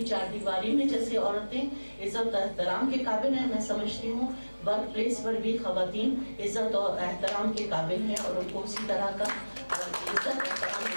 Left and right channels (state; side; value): inverted; both; correlation -1.00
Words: चार दीवारी में जैसे औरतें इज्जत और एहतराम के काबिल हैं, मैं समझती हूँ वर्क प्लेस पर भी खवातीन इज्जत और एहतराम के काबिल हैं और उनको उसी तरह का इज्जत एहतराम